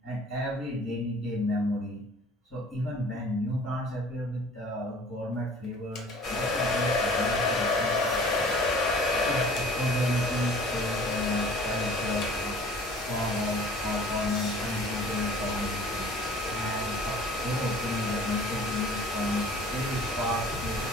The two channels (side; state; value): both; normal; correlation 0.48